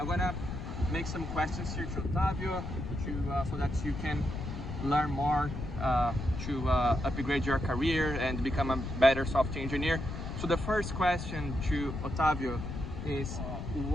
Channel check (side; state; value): left; noise; rumble, 6 dB below the sound